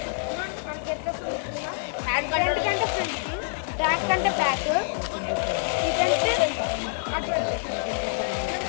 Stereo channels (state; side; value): silent; right; 61 dB below the other